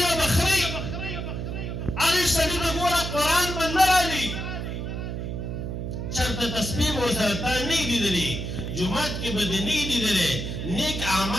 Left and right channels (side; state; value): right; noise; hum, 4 dB below the sound